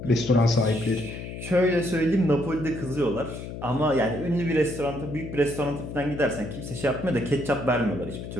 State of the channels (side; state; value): left; noise; hum, 9 dB below the sound